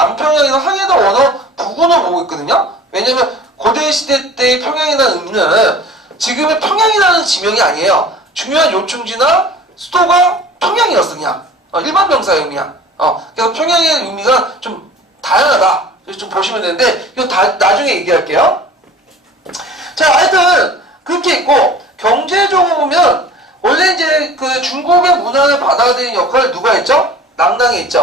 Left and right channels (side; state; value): both; normal; correlation 0.44